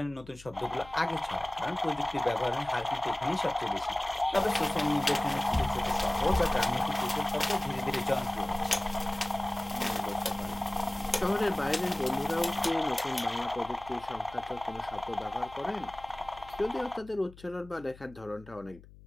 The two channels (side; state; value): left; noise; hum, 21 dB below the sound